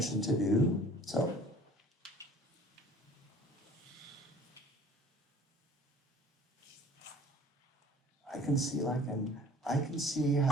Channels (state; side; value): normal; both; correlation 0.50